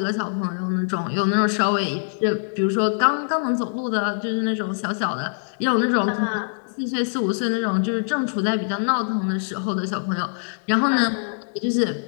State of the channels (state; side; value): silent; right; digital silence